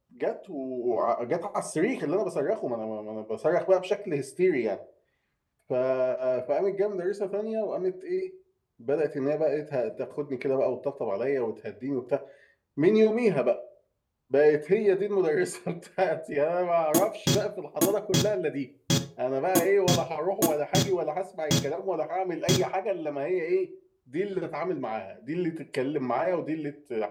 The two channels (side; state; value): both; identical; correlation 1.00